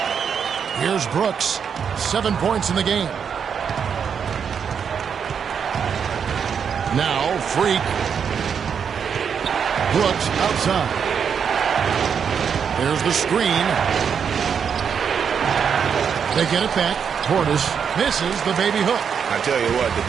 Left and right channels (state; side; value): quieter; left; 7.1 dB